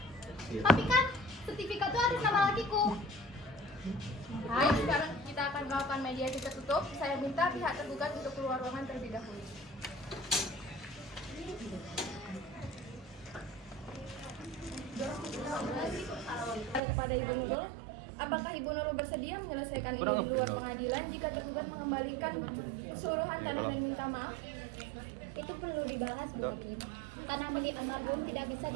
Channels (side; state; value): left; drops out; at 16.8 s